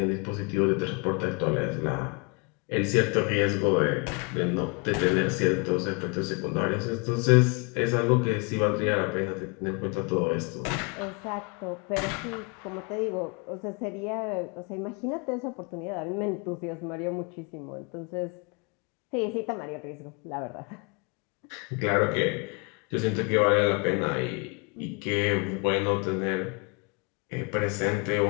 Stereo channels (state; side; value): quieter; right; 32.1 dB